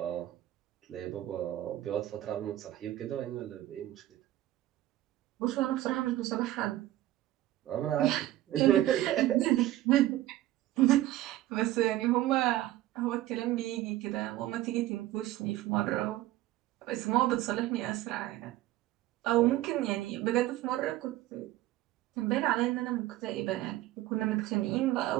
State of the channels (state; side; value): quieter; left; 15.0 dB